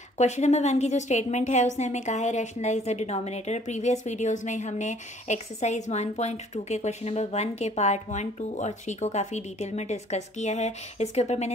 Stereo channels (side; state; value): both; normal; correlation 0.58